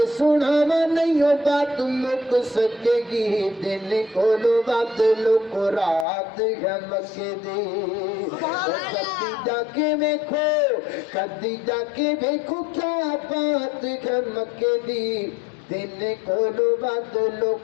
سناواں نہیں ہو بات مک سکے گی دن کولو بدلو کو رات ہے مکے دی. کدی جا کے ویکھو کدی جا کے ویکھو کیا بات ہے مکے دی دن کولو بدلو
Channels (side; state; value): right; drops out; at 6.1 s